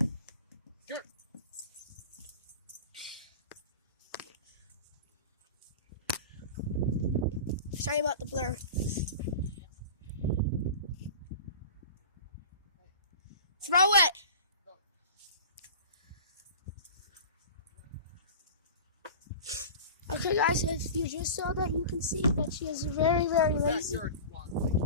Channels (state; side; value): inverted; both; correlation -0.35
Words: Good. Sorry about the blur. Throw it. Okay guys, if you just saw that, you can see that she is very, very lazy.